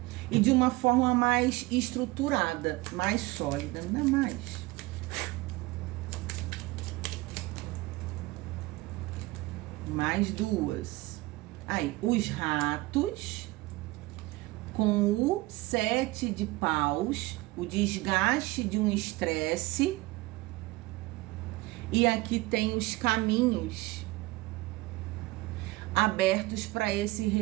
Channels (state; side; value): quieter; left; 21.1 dB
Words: E de uma forma mais estruturada, mais sólida, não é mais. Mais 2. Aí, os ratos com o 7 de paus, o desgaste de um estresse. E aqui tem os caminhos abertos para esse